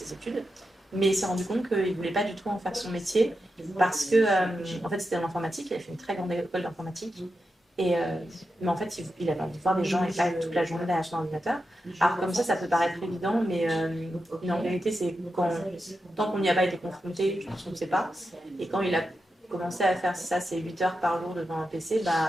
études. Mais il s'est rendu compte qu'il ne voulait pas du tout en faire son métier parce que, en fait, c'était en informatique. Il a fait une très grande école d'informatique. Mais en fait, il avait envie de voir des gens et pas toute la journée derrière son ordinateur. Alors, comme ça peut paraître évident, mais en vérité, c'est tant qu'on n'y a pas été confronté, je pense qu'on ne sait pas. Et quand il a commencé à faire ça, c'est 8 heures par jour devant un PC,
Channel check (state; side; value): normal; both; correlation 0.89